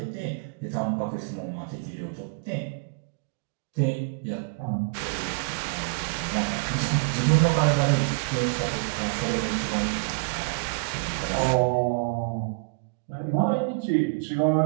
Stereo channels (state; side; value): quieter; left; 34.2 dB